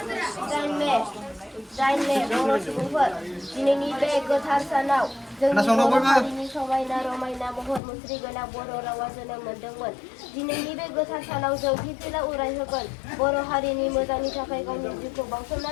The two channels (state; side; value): drops out; right; at 7.8 s